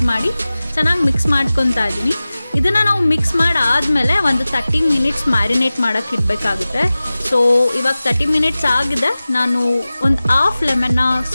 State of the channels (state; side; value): inverted; both; correlation -0.97